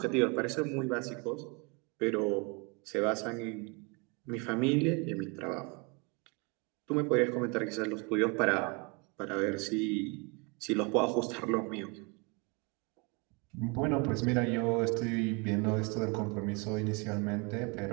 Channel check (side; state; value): left; quieter; 30.3 dB